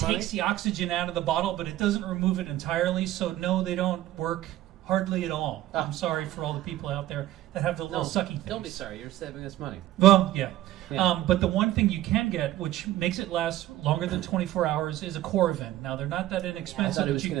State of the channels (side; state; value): left; quieter; 14.5 dB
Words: takes the oxygen out of the bottle, but it doesn't remove it entirely. So no, they don't work hardly at all. Oh. I'm sorry for all the people out there that have the little sucky things. Don't be sorry. You're saving us money. Well, yeah. Yeah. But the one thing you can get, which makes it last longer than 24 hours, is a Corvin. Now they're not that I inexpensive. thought he but was you